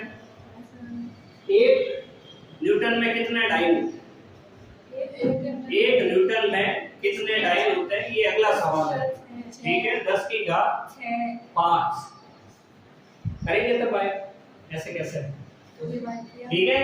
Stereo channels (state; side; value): identical; both; correlation 1.00